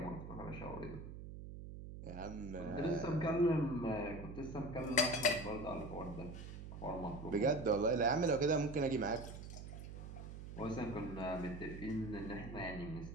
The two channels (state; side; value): noise; right; hum, 10 dB below the sound